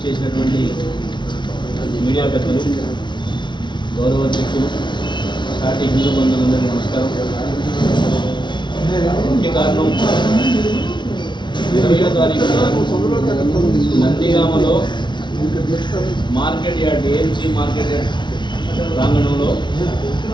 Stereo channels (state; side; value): late; right; 0.23 ms